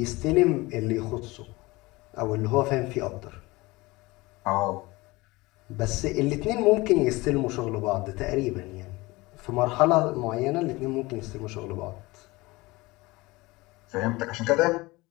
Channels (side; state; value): right; quieter; 21.8 dB